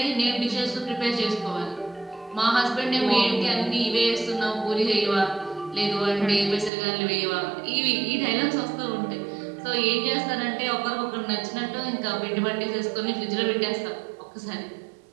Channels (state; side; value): drops out; left; at 6.7 s